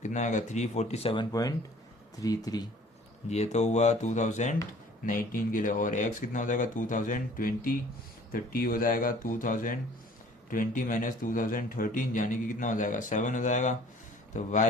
कितना आएगा 347.33। ये तो हुआ 2019 के लिए। और एक्स कितना हो जाएगा 2020, तो टी हो जाएगा 2020 माइनस 2013 यानी कि कितना हो जाएगा 7 हो जाएगा। तो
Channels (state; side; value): normal; both; correlation 0.52